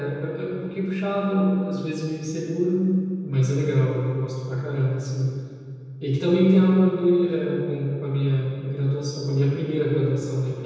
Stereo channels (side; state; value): both; identical; correlation 1.00